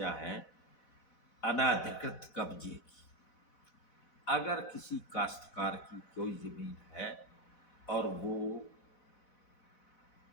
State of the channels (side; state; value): right; late; 4.1 ms